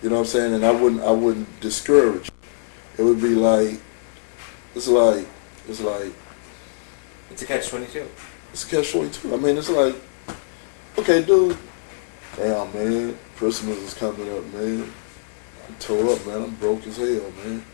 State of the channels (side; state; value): right; silent; 64 dB below the other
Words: You know what I'm saying? And I wouldn't discourage it. It would be like, it's like, it's like, It's a catch-22. it's a catch-22. I mean, it's like, okay, dude, damn, man, Christmas is coming up, man. I'm tore up, man. I'm broke as hell, man.